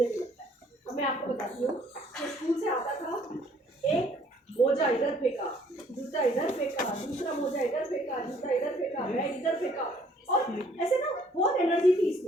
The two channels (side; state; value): both; normal; correlation 0.61